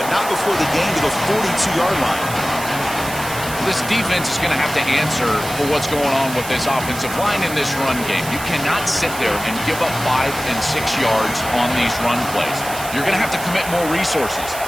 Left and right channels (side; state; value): right; noise; hiss, 10 dB below the sound